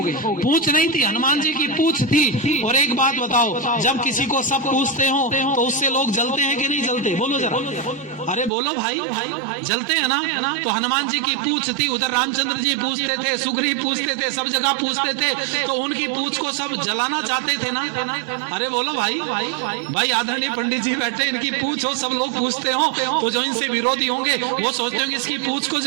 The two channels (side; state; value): left; drops out; at 8.5 s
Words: नहीं थी, हनुमान जी की पूछ थी। और एक बात बताओ, जब किसी को सब पूछते हो तो उससे लोग जलते हैं कि नहीं जलते? बोलो जरा, अरे बोलो भाई, जलते हैं ना? तो हनुमान जी की पूछ थी, उधर रामचंद्र जी पूछते थे, सुग्रीव पूछते थे, सब जगह पूछते थे, तो उनकी पूछ को सब जलाना चाहते थे ना? अरे बोलो भाई आदरणीय पंडित जी बैठे, इनकी पूछ हो, सब लोग पूछते हो, तो जो इनसे विरोधी होंगे वो सोचते होंगे इसकी पूछ को